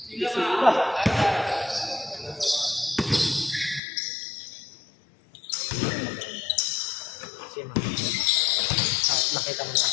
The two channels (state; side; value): drops out; right; at 3.8 s